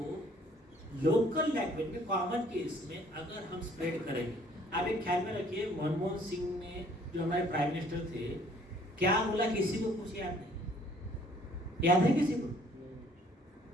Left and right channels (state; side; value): normal; both; correlation 0.59